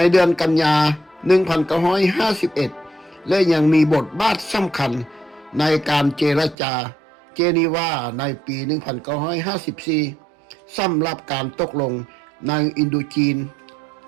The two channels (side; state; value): left; drops out; at 6.6 s